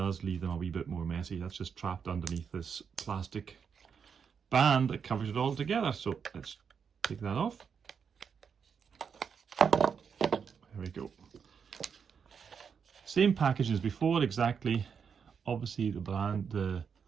leave them a wee bit more messy. That's just trapped underneath this plastic band that covers it all together. So let's take that off. There we go. Same package as before exactly. Obviously the brand, the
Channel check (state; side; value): quieter; left; 6.6 dB